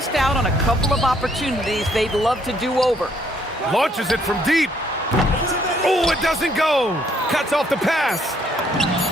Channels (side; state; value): both; normal; correlation 0.67